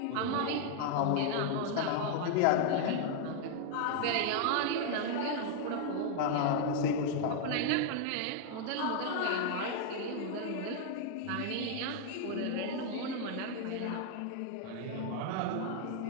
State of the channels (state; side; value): different; both; correlation 0.00